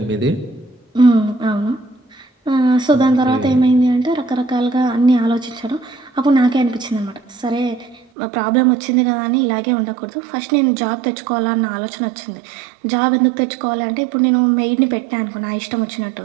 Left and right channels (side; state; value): left; drops out; at 8.1 s